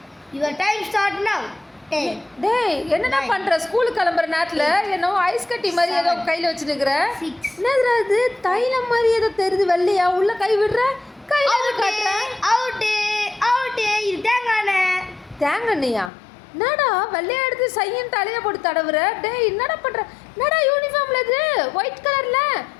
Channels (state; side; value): drops out; right; at 16.1 s